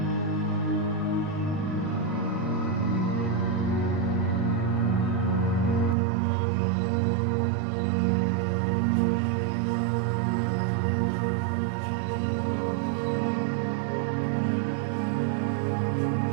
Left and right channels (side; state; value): left; drops out; at 6.0 s